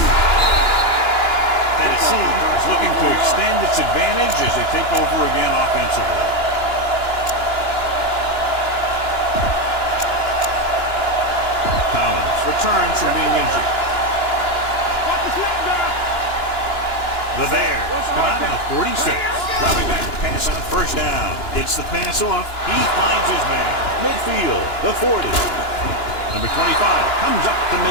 Tennessee is looking to extend its advantage as they take over again offensively. Collins returns from being injured. The Bears come out on the 46. Dropping back to pass on first down. Gets the pass off. He finds his man. Midfield, the 40. Number 25 comes up to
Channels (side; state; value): right; late; 2.9 ms